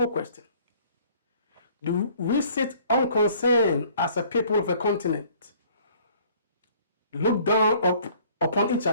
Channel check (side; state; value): both; inverted; correlation -0.57